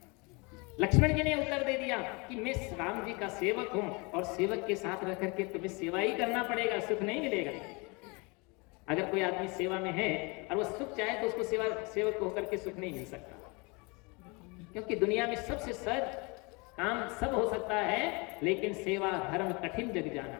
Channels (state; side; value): quieter; right; 28.8 dB